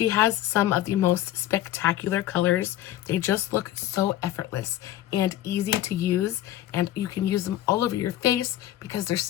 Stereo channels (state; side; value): quieter; right; 13.5 dB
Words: has some of the most spectacular colors. They just look so effortless and easy to use, and you can use them all over your face because they're